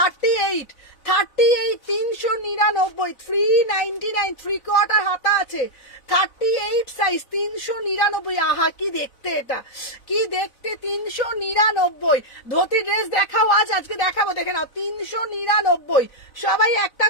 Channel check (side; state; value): right; late; 4.0 ms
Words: 399, 399, 3/4 হাতা আছে, 38 সাইজ, 399। আহা কি দেখতে, এটা কি দেখতে, 399। ধুতি ড্রেস দেখাও, আজকে দেখাবো, দেখে নাও। 399। সবাই একটা